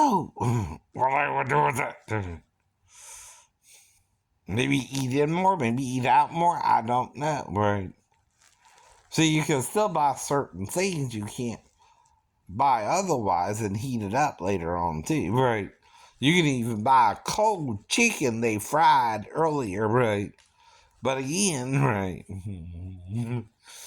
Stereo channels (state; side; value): identical; both; correlation 1.00